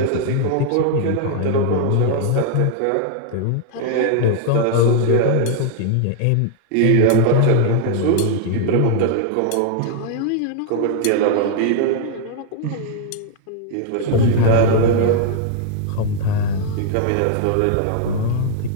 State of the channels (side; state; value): both; different; correlation 0.00